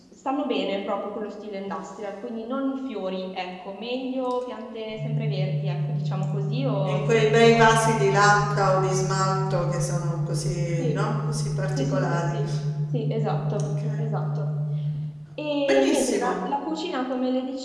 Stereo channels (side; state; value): both; identical; correlation 1.00